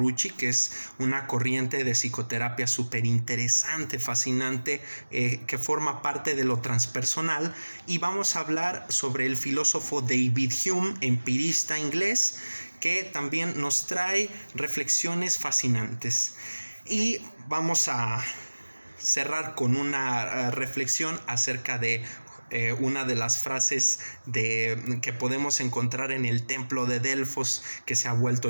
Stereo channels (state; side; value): inverted; both; correlation -1.00